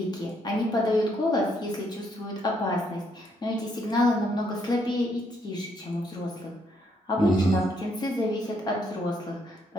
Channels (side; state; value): both; normal; correlation 0.72